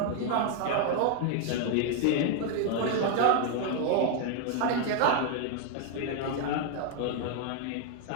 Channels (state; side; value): different; both; correlation 0.00